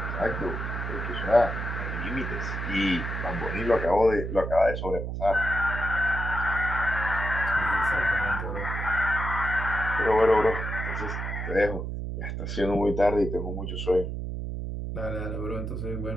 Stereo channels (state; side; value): noise; right; hum, 4 dB below the sound